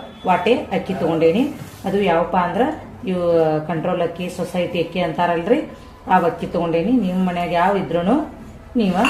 ವಾಟೆ ಅಕ್ಕಿ ತಗೊಂಡೇನಿ. ಅದು ಯಾವಪ್ಪ ಅಂದ್ರ ಇವು ಕಂಟ್ರೋಲ್ ಅಕ್ಕಿ, ಸೊಸೈಟಿ ಅಕ್ಕಿ ಅಂತಾರಲ್ರಿ, ಆ ಅಕ್ಕಿ ತಗೊಂಡೇನಿ. ನಿಮ್ಮ ಮನ್ಯಾಗ ಯಾವ ಇದ್ರೂ ನೀವು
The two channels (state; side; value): identical; both; correlation 1.00